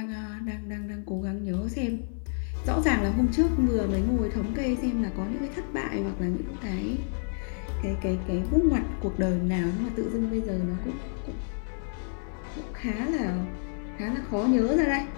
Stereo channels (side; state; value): right; silent; 59 dB below the other